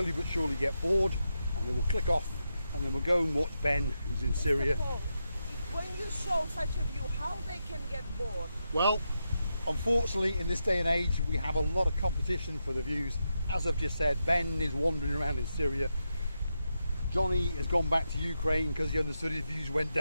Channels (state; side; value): inverted; both; correlation -0.86